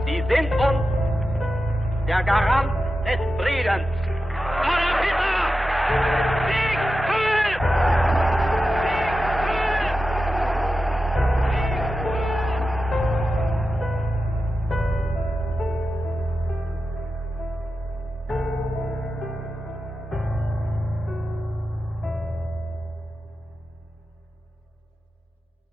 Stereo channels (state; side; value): normal; both; correlation 0.91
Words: Sie sind uns der Garant des Friedens. Adolf Hitler!